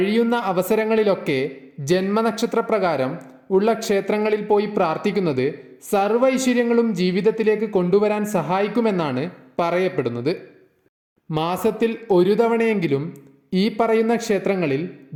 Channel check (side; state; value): both; identical; correlation 1.00